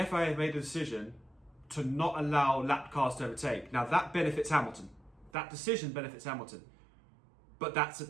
FIA have made a decision to not allow lap cars to overtake. Now that benefits Hamilton. That decision benefits Hamilton. But that's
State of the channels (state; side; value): drops out; left; at 5.3 s